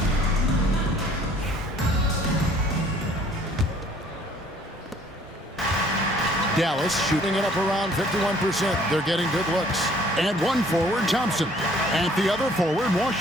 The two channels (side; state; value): both; normal; correlation 0.57